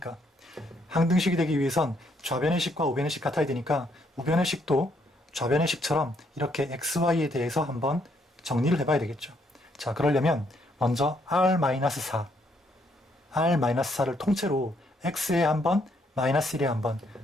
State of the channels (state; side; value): normal; both; correlation 0.71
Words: 항등식이 되기 위해선 좌변의 식과 우변의 식 같아야 되니까 우변의 식도 좌변의 식처럼 이렇게 xy에 대해서 한번 정리를 해봐야 되겠죠. 자, 그러려면 먼저 r-4, r-4를 통째로 x에 한번, 마이너스 1에 한번